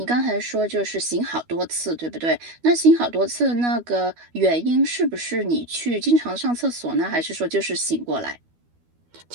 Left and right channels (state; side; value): late; left; 12 ms